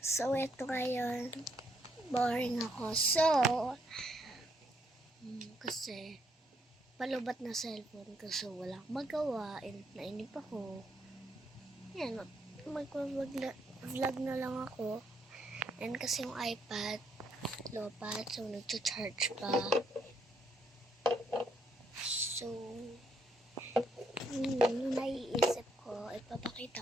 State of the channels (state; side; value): normal; both; correlation 0.73